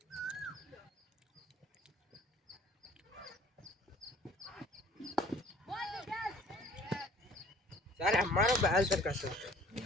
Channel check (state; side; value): normal; both; correlation 0.52